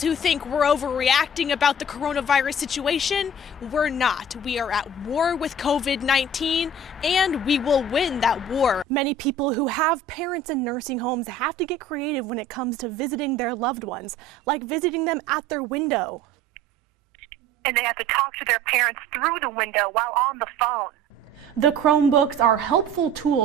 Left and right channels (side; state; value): both; normal; correlation 0.44